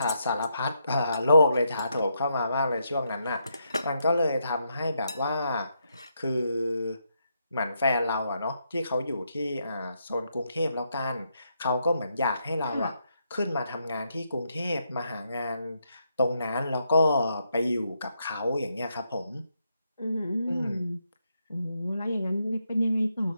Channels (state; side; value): inverted; both; correlation -0.80